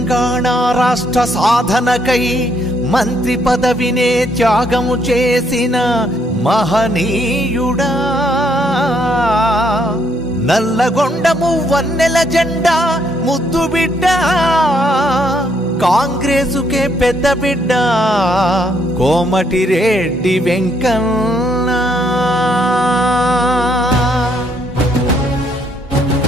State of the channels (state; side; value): normal; both; correlation 0.71